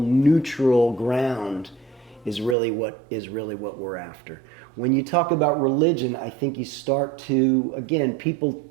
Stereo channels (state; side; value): drops out; left; at 2.6 s